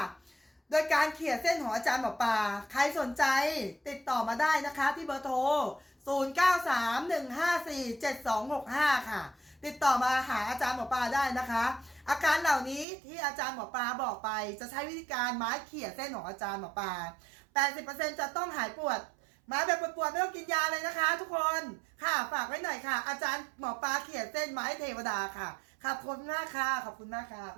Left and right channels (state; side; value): drops out; left; at 12.9 s